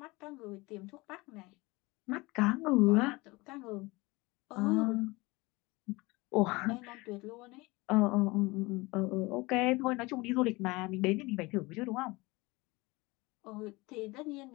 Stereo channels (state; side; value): quieter; right; 23.1 dB